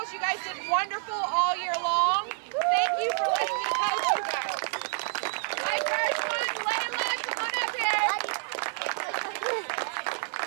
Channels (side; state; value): left; silent; digital silence